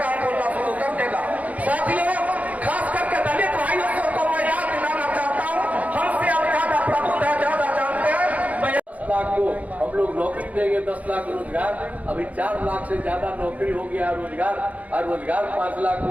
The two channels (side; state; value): left; late; 0.071 ms